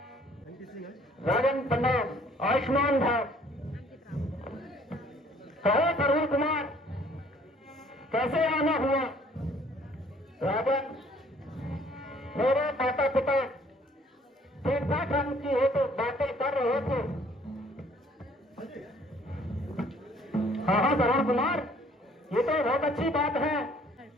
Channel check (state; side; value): normal; both; correlation 0.58